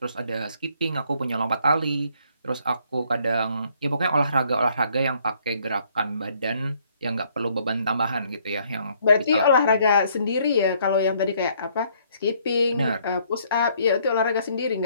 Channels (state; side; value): inverted; both; correlation -0.66